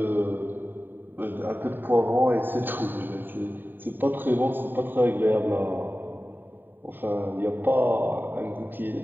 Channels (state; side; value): late; left; 0.093 ms